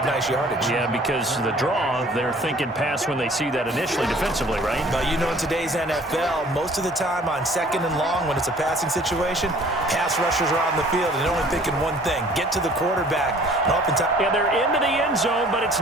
nice yardage. Yeah, because the draw, they're thinking pass when they see that initially defensively, right? But you know, in today's NFL, most of the time on 2nd and long, when it's a passing situation, pass rushers are on the field and they're only thinking one thing: get to the quarterback. And oftentimes, yeah, they're into the end zone, but it's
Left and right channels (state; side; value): normal; both; correlation 0.53